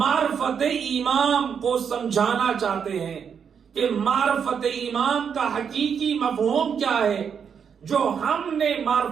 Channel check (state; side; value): quieter; left; 7.1 dB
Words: امام کو سمجھانا چاہتے ہیں کہ معرفت امام کا حقیقی مفہوم کیا ہے۔ جو ہم نے